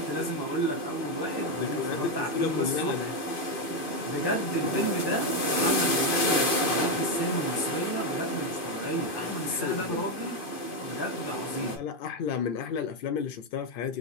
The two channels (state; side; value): late; right; 2.5 ms